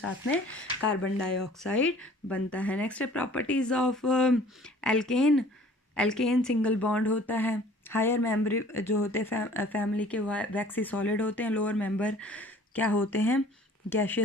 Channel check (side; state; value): both; normal; correlation 0.51